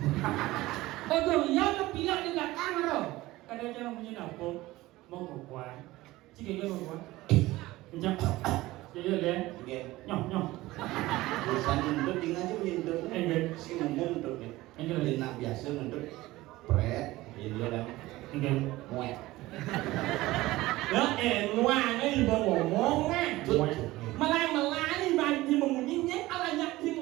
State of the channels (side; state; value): left; quieter; 18.3 dB